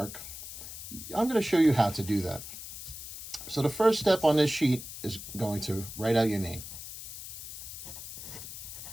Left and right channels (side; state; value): left; noise; hiss, 10 dB below the sound